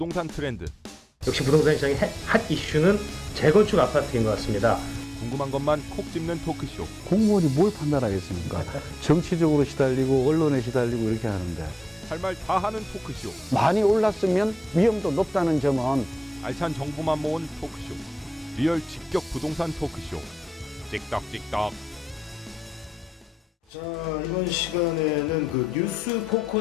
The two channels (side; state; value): both; normal; correlation 0.92